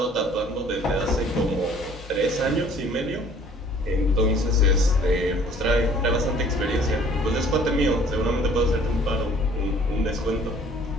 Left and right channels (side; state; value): both; normal; correlation 0.55